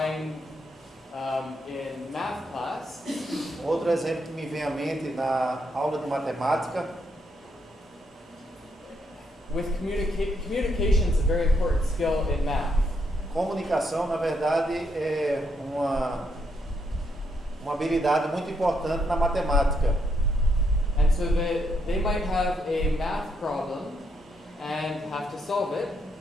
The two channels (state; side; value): normal; both; correlation 0.77